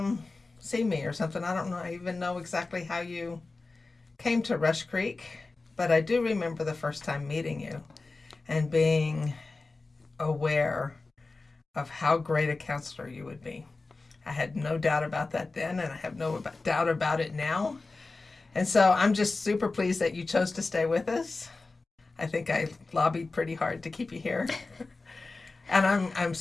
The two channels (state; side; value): quieter; right; 3.6 dB